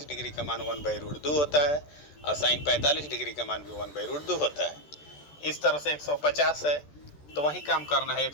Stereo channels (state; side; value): late; right; 13 ms